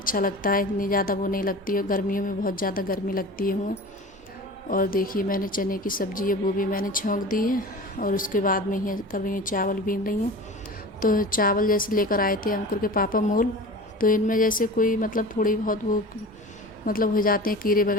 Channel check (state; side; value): normal; both; correlation 0.36